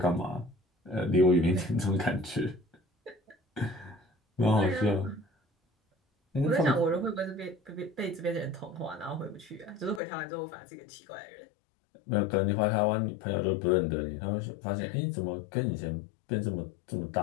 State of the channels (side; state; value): right; drops out; at 10.0 s